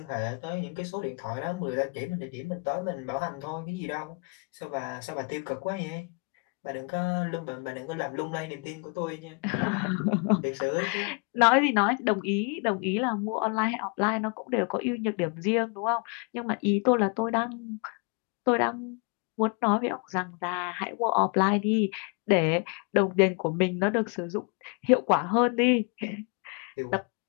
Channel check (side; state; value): right; quieter; 34.4 dB